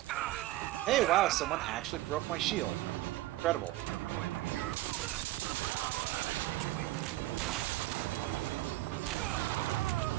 Hey, wow, someone actually broke my shield. Incredible.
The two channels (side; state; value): left; quieter; 16.7 dB